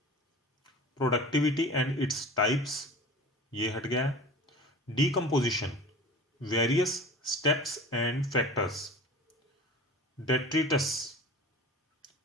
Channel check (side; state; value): both; normal; correlation 0.37